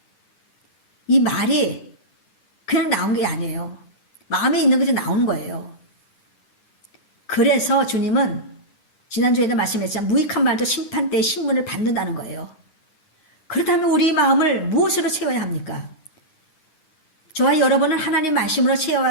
이 말이 그냥 나온 게 아니에요. 마음에 있는 것이 나오는 거예요. 그래서 주님은 지난주에도 말씀했지만 무익한 말도 심판 때의 신문을 받는다는 거예요. 그렇다면 우리 마음을 무엇으로 채워야 합니까? 저와 여러분은 하나님 말씀으로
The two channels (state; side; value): late; right; 9.5 ms